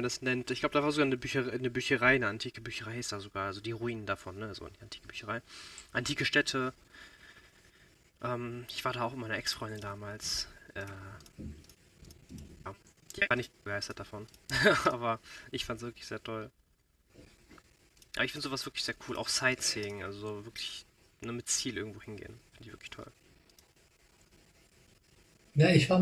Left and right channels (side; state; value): both; identical; correlation 1.00